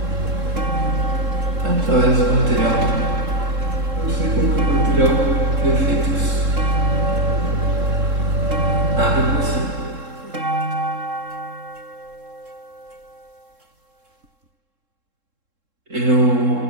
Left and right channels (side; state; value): left; late; 3.7 ms